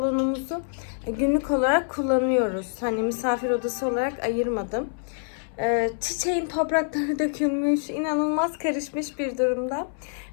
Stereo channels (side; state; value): right; silent; 59 dB below the other